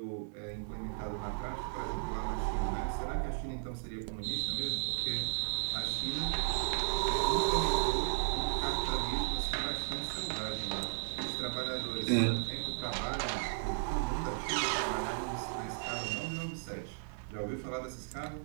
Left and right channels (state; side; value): silent; left; digital silence